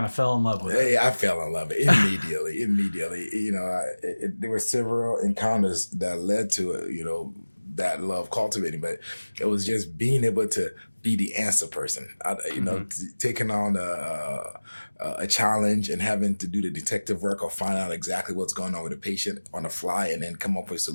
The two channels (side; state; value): both; inverted; correlation -1.00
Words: of fell in love with it? Yeah, I fell in love with it immediately. There were several encounters that led to it, that love cultivating, but it was just being able to be the answer person, taking on a challenge and having to do the detective work or find out exactly what's going on with the patient on the fly and then come up with